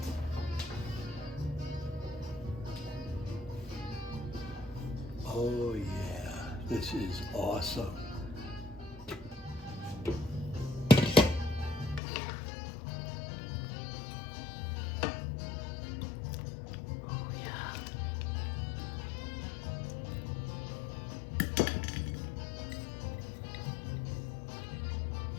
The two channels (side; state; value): right; drops out; at 12.0 s